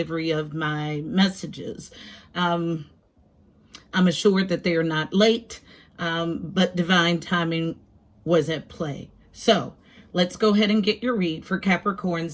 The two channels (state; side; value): identical; both; correlation 1.00